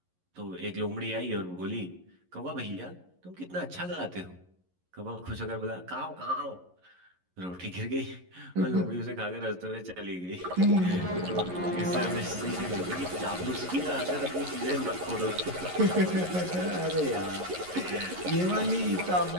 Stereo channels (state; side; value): late; left; 11 ms